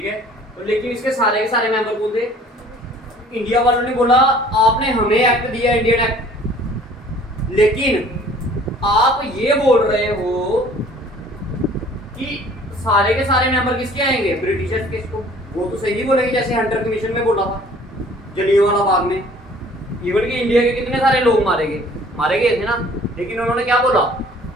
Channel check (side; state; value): both; normal; correlation 0.53